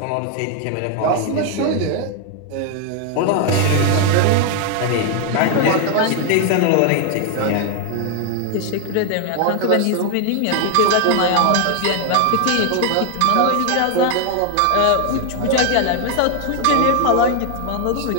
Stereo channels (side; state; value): both; different; correlation 0.01